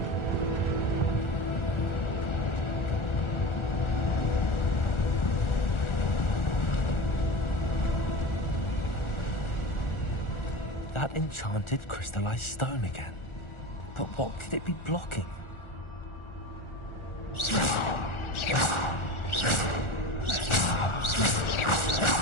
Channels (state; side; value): late; right; 1.4 ms